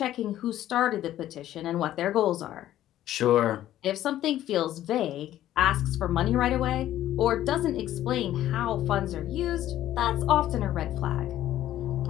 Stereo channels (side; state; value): right; quieter; 12.9 dB